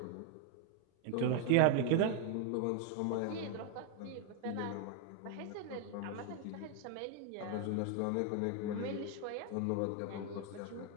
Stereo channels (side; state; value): both; different; correlation 0.01